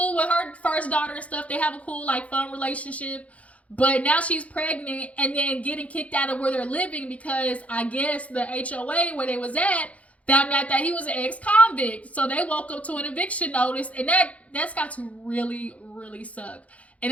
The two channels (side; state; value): right; late; 0.066 ms